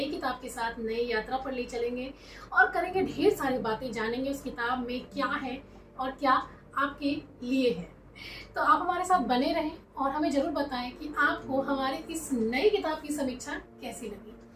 किताब के साथ, नई यात्रा पर ले चलेंगे और करेंगे ढेर सारी बातें, जानेंगे उस किताब में क्या है और क्या आपके लिए है। तो आप हमारे साथ बने रहें और हमें जरूर बताएं कि आपको हमारे इस नई किताब की समीक्षा कैसी लगी।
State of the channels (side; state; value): both; identical; correlation 1.00